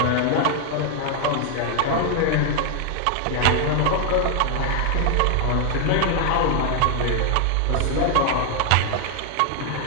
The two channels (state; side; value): different; both; correlation 0.00